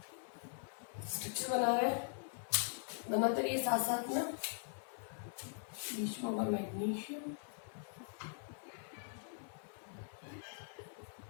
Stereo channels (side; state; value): right; silent; 50 dB below the other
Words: स्ट्रक्चर बनाते रहिए साथ साथ में। बीच में होगा मैग्नीशियम,